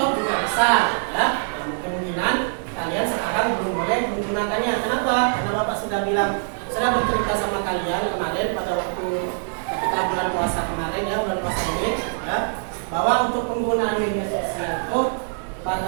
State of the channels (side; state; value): left; silent; 59 dB below the other